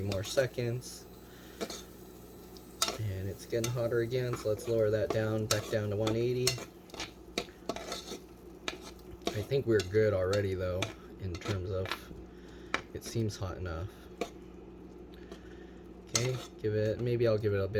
more seconds. And it's getting hotter again, so let's lower that down, back down to 180. I think we're good already though, in terms of, it seems hot enough. Okay, maybe I'll give it a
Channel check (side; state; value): both; identical; correlation 1.00